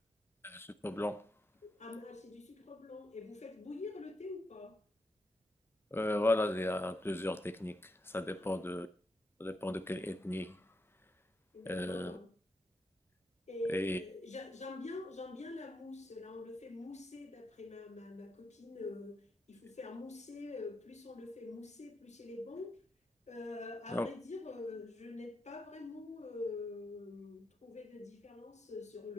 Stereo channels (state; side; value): normal; both; correlation 0.83